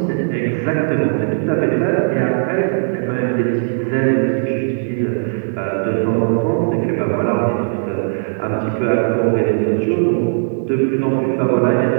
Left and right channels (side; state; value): left; silent; digital silence